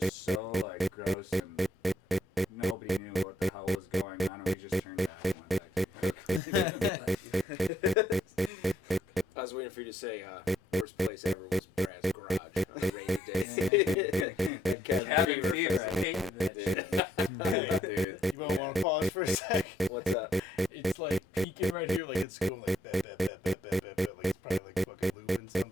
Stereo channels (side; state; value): both; normal; correlation 0.70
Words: so like gross and nobody knew what the hell was going on, and we just turned it out and went back. I was waiting for you to say worst place ever was Brad's garage on a rainy day. Cabin fever, I hate that shit. Dude. You might want to pause for a sec. What's up? It's like peeking right here, like it's going like that. Like it's probably like fucking looping